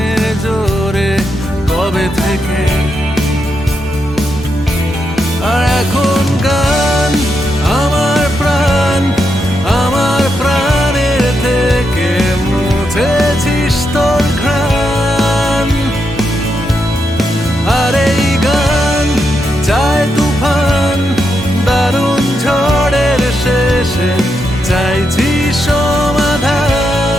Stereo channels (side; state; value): both; normal; correlation 0.83